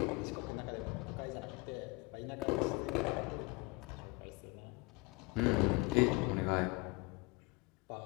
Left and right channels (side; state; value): right; quieter; 26.6 dB